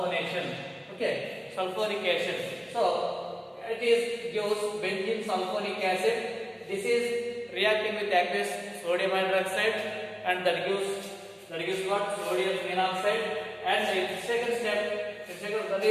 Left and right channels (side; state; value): both; identical; correlation 1.00